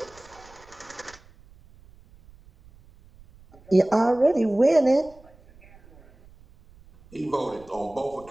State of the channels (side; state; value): right; noise; rumble, 26 dB below the sound